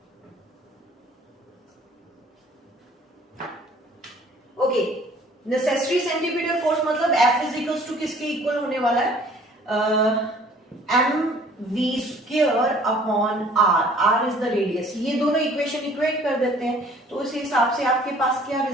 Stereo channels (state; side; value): normal; both; correlation 0.54